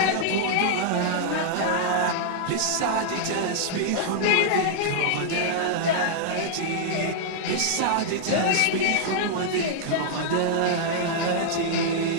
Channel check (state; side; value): different; both; correlation -0.01